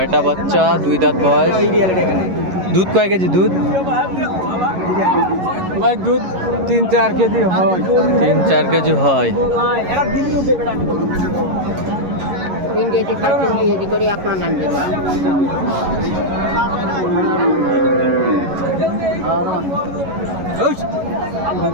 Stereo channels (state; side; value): late; left; 11 ms